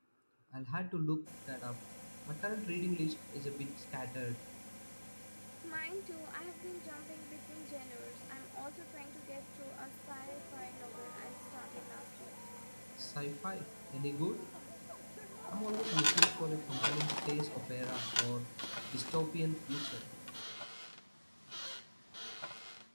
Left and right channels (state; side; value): inverted; both; correlation -1.00